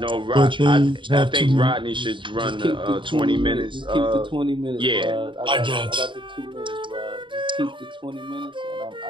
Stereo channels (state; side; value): late; left; 0.24 ms